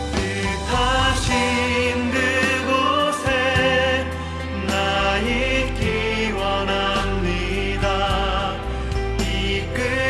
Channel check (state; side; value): identical; both; correlation 1.00